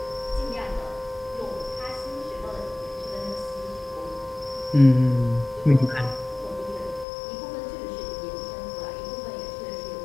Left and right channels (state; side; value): drops out; right; at 7.1 s